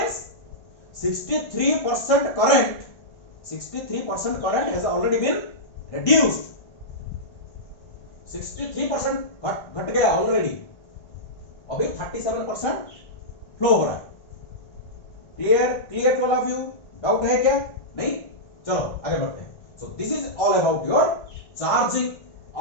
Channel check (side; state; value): right; late; 1.5 ms